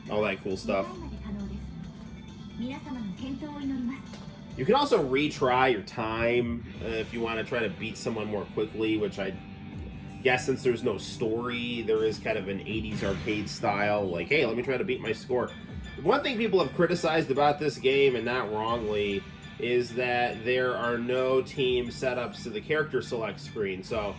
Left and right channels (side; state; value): both; identical; correlation 1.00